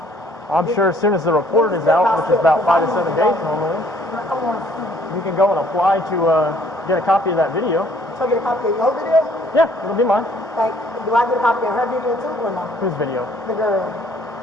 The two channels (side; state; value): both; normal; correlation 0.60